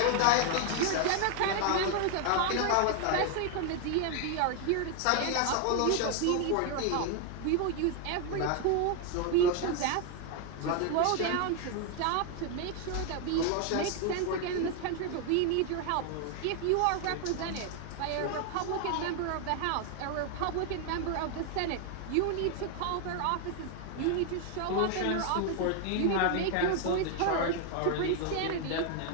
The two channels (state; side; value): different; both; correlation 0.01